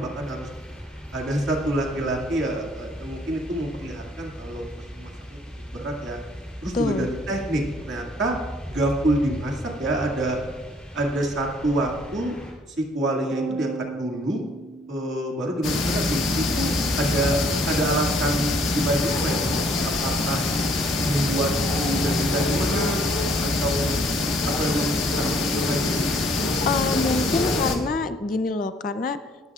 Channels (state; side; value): normal; both; correlation 0.62